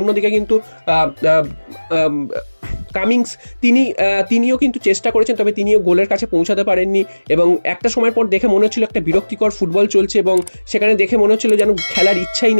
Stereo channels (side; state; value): both; inverted; correlation -1.00